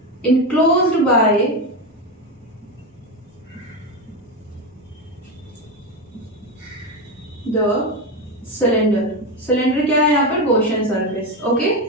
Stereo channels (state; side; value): normal; both; correlation 0.15